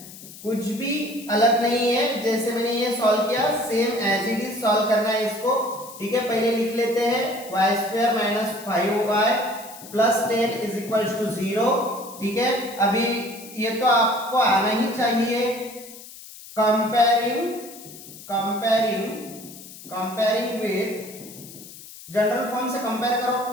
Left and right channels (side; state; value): left; noise; hiss, 16 dB below the sound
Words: कुछ भी अलग नहीं है, जैसे मैंने ये सॉल्व किया same as it is solve करना है इसको, ठीक है। पहले लिख लेते हैं y² - 5y + 10 = 0, ठीक है। अभी ये तो आपको आना ही चाहिए। कंपेयरिंग विथ, जनरल फॉर्म से कंपेयर करो,